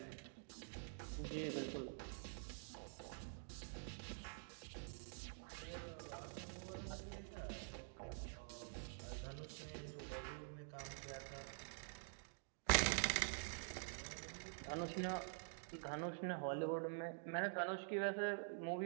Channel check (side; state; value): left; silent; digital silence